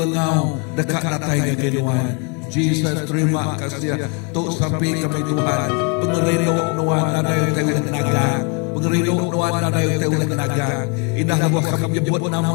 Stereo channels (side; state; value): right; quieter; 32.9 dB